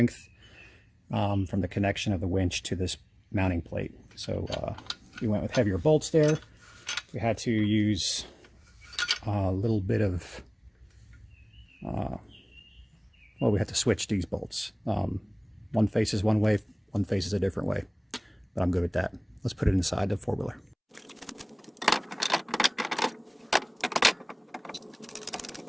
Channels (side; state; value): both; identical; correlation 1.00